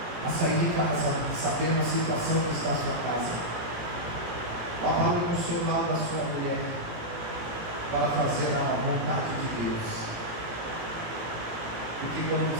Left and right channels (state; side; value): late; left; 17 ms